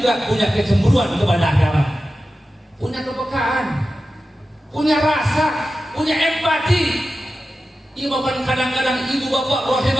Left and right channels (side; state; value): both; normal; correlation 0.93